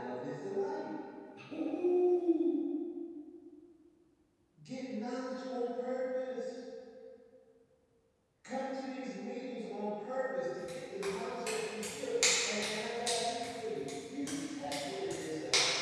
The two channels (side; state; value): both; identical; correlation 1.00